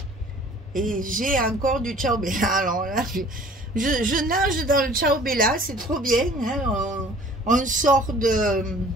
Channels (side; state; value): both; normal; correlation 0.50